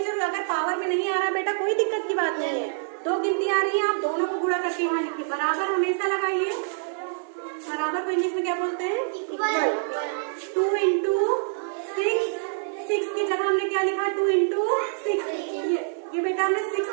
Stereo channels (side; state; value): left; silent; 61 dB below the other